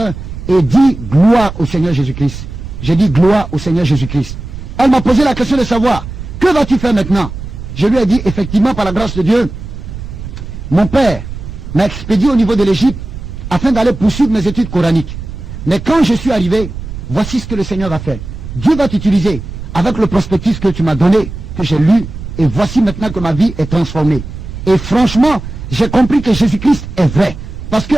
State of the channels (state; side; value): noise; right; rumble, 10 dB below the sound